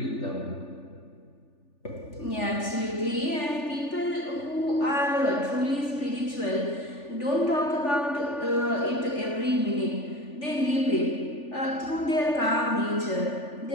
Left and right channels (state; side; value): late; right; 3.4 ms